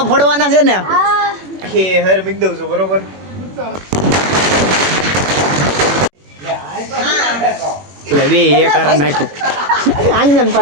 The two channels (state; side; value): late; left; 21 ms